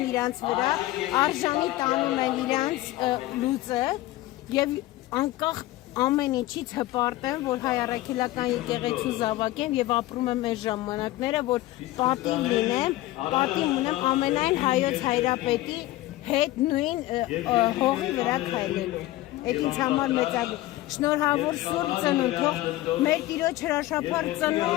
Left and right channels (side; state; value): right; quieter; 16.8 dB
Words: իրանց վրա, արժանի տանում են իրանց լուծը եւ անկախ ամեն ինչից հպարտ եմ, որ հայ առաքելական եկեղեցու զավակ եմ եւ ապրում եմ այս ժամանակները, որ պատիվ լինեմ, պատիվ ունեմ ամենայն հայոց հայրապետի հետ նույն հողի վրա քայլելու։ Այդ ինձ համար մեծագույն շնորհավոր Սուրբ Ծնունդ, թող մեր Տիրոջ հրաշափառ